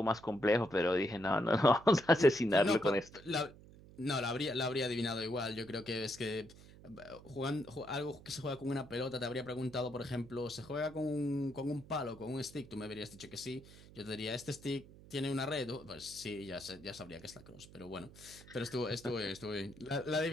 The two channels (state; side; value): noise; right; hum, 20 dB below the sound